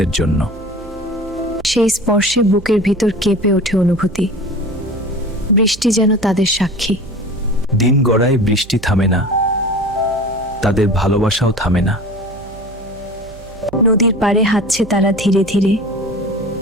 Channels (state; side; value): noise; right; hum, 19 dB below the sound